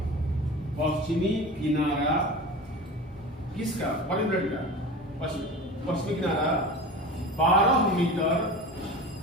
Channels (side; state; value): both; normal; correlation 0.33